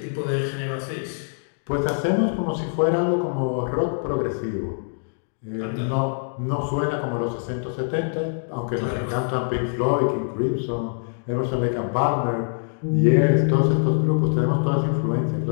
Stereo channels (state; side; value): silent; right; digital silence